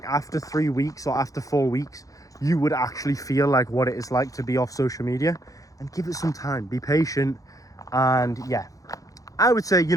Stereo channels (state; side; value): late; right; 0.17 ms